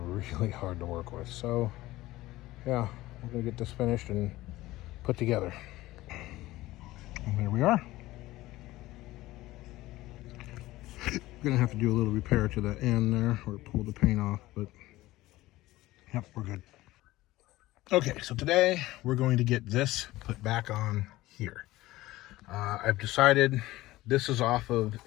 hard to work with. So yeah, we're gonna get this finished and put together. And there we are. Gonna have to do a little repair to the end there, or pull the paint off, but yep, we're good. Okay, so today we're going to get this put back on here. I've decided this is off of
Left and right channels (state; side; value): quieter; right; 17.5 dB